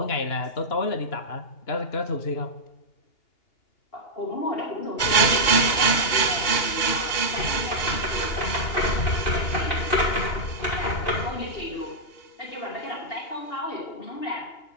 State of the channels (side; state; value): right; late; 2.8 ms